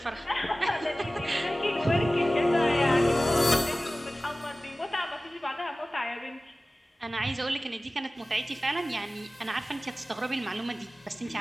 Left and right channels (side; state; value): both; normal; correlation 0.97